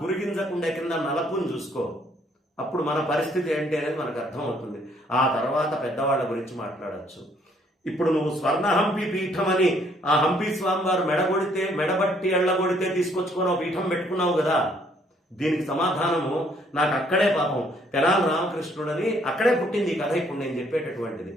గురిగింజకుండే కింద నలపుని చూసుకో. అప్పుడు మన పరిస్థితి ఏంటి అనేది మనకు అర్థమవుతుంది. ఆ తర్వాత పెద్దవాళ్ళ గురించి మాట్లాడచ్చు. ఇప్పుడు నువ్వు స్వర్ణ హంపి పీఠం అని ఆ హంపి స్వామి వారు మెడబట్టి ఎళ్ళగొడితే తీసుకొచ్చుకొని పీఠం పెట్టుకున్నావు కదా, దీనికి సమాధానము నాకు అక్కడే పాపం తెనాలి రామకృష్ణుడని అక్కడే పుట్టింది ఈ కథ. ఇప్పుడు నేను చెప్పేటటువంటిది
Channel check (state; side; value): normal; both; correlation 0.65